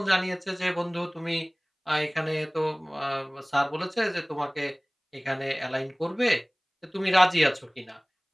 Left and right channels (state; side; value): identical; both; correlation 1.00